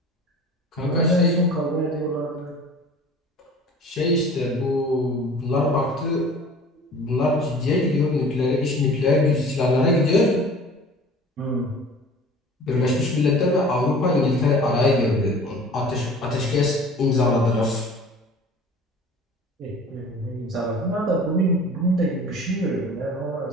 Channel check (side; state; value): both; normal; correlation 0.44